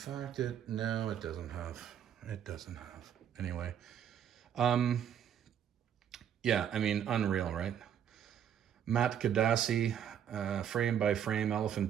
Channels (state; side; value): quieter; left; 9.2 dB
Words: no, it doesn't have. It doesn't have. Anyway. Yeah, I mean, unreal, right? Matt Kadasi, frame by frame,